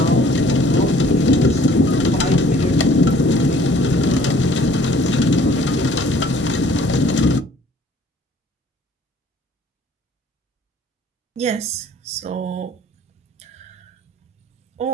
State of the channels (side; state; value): both; normal; correlation 0.56